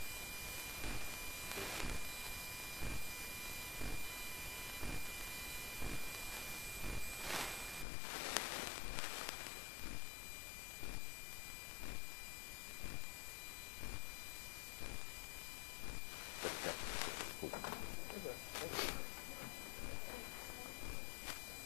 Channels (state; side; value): drops out; right; at 7.9 s